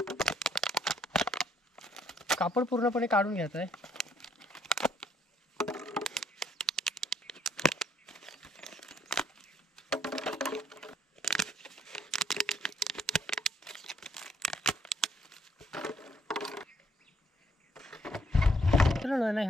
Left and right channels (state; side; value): normal; both; correlation 0.68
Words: कापड पूर्णपणे काढून घ्यायचं आहे। मित्रांनो ना